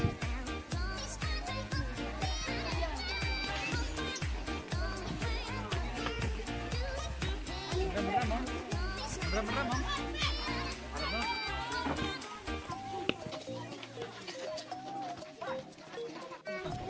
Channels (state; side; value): identical; both; correlation 1.00